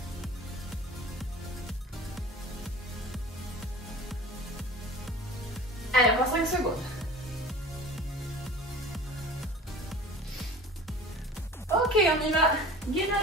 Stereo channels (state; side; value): normal; both; correlation 0.40